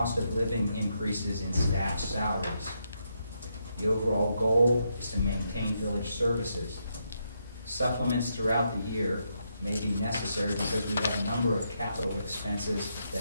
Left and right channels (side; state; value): both; inverted; correlation -0.80